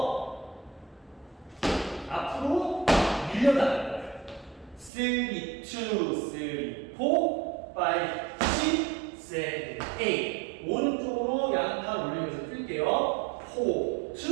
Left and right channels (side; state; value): left; drops out; at 4.9 s